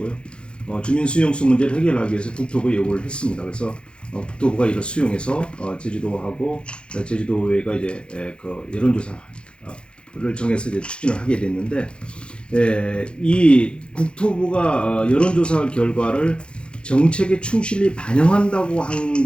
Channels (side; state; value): right; late; 0.055 ms